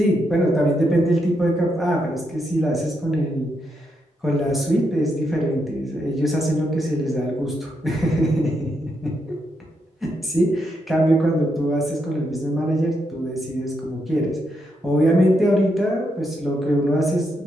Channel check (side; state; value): both; normal; correlation 0.80